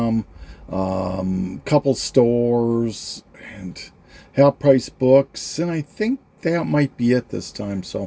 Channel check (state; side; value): identical; both; correlation 1.00